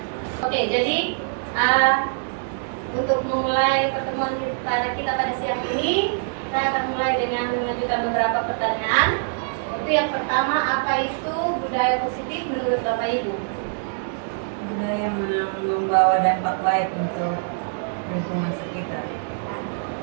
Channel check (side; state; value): left; silent; digital silence